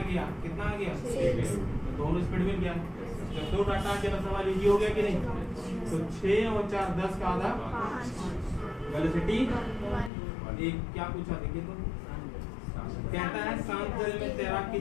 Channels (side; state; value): right; drops out; at 10.1 s